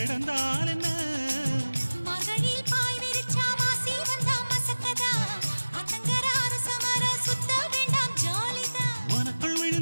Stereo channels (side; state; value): both; inverted; correlation -1.00